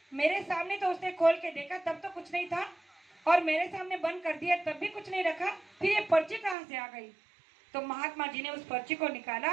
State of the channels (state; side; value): drops out; left; at 6.6 s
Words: मेरे सामने तो उसने खोल के देखा तब तो कुछ नहीं था और मेरे सामने बंद कर दिया तब भी कुछ नहीं रखा, फिर ये पर्ची कहाँ से आ गई। तो महात्मा जी ने उस पर्ची को निकाला